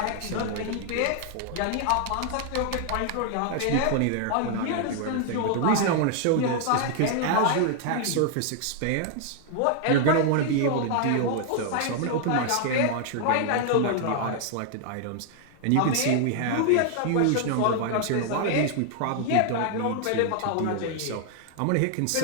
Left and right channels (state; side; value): different; both; correlation 0.00